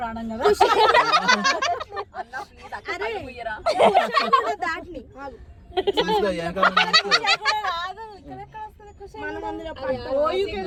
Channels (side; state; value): both; identical; correlation 1.00